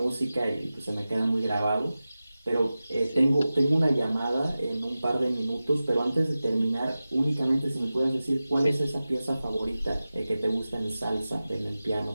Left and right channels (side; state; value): both; inverted; correlation -0.95